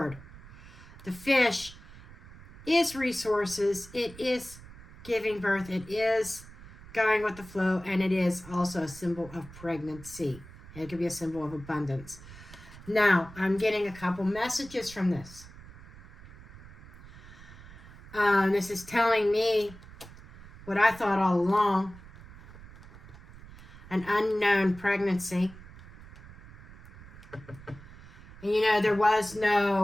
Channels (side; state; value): right; noise; rumble, 18 dB below the sound